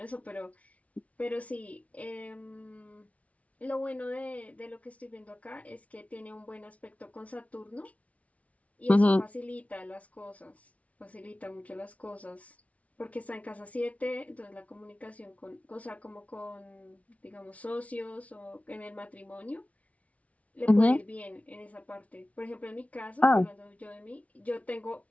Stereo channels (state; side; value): late; right; 0.066 ms